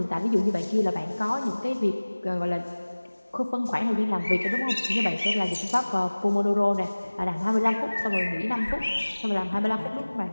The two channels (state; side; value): inverted; both; correlation -1.00